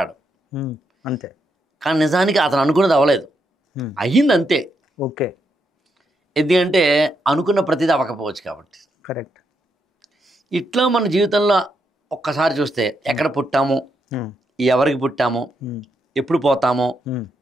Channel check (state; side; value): normal; both; correlation 0.80